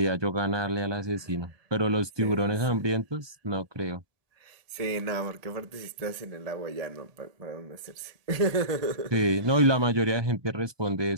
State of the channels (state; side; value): late; left; 1.2 ms